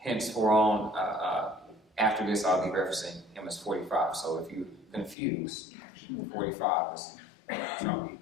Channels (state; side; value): drops out; right; at 5.2 s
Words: after this, I'll be referencing him as 45. So if you're confused, 45 is Trump